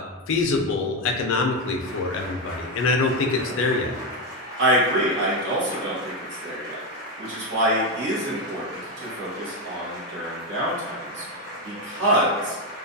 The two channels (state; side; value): normal; both; correlation 0.09